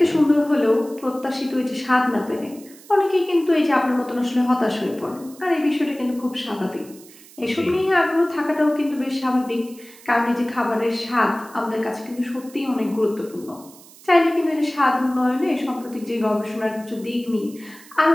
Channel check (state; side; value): noise; right; hiss, 22 dB below the sound